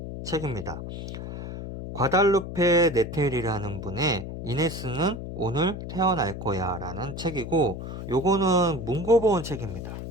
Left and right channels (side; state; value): left; noise; hum, 8 dB below the sound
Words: 책입니다. 과달루페 네텔이라는 분의 이네스는 오늘 태어날 거야 라는 책이고, 요거는 문고본 책입니다.